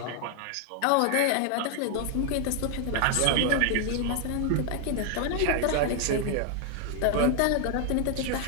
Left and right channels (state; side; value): different; both; correlation 0.00